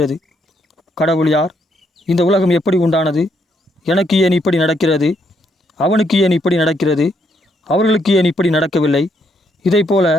கடவுள் யார்? இந்த உலகம் எப்படி உண்டானது? எனக்கு ஏன் இப்படி நடக்கிறது? அவனுக்கு ஏன் இப்படி நடக்கிறது? அவர்களுக்கு ஏன் இப்படி நடக்கவில்லை? இதைப்போல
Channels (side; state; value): both; normal; correlation 0.74